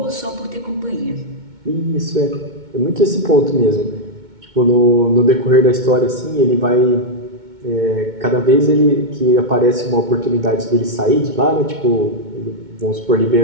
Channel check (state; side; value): late; left; 2.2 ms